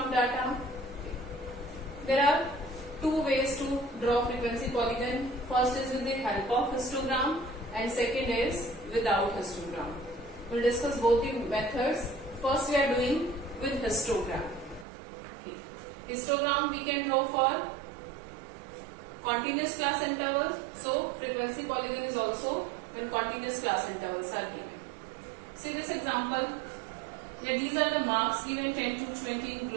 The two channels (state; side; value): drops out; left; at 14.9 s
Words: data. There are two ways to draw frequency polygon. First is with the help of histogram and second is without histogram. We'll discuss both the methods. First we are doing with histogram. Histogram we can draw for continuous class intervals. So frequency polygon is also when continuous class intervals are given. See this example. Here these are the marks given 10 to 20 in